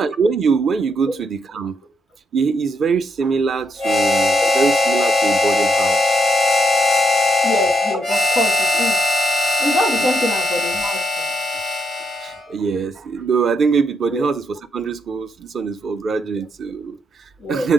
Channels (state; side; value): normal; both; correlation 0.77